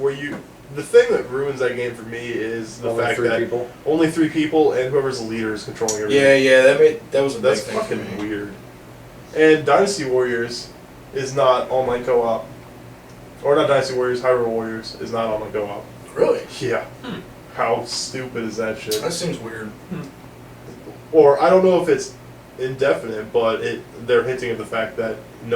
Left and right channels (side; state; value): both; identical; correlation 1.00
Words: you, the thing that ruins that game for me is the Only fact 3 that people. only 3 people and whoever's the leader is controlling everything. that was a That's big thing for fucking me. weird. And Dynasty Warriors is not online co-op. Or not Dynasty Warriors, Hyrule Warriors is not online co-op. Really? Yeah. How stupid is that shit? That seems weird. Or I don't know if it's indefinite, but they're hinting at the fact that